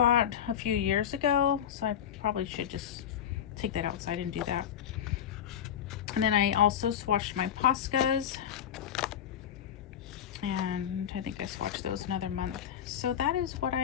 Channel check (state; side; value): quieter; right; 9.4 dB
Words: a few years ago, so I probably should just take that outside and do that. And then I also swatched my Poscas, and I think I swatched those another month. So that is what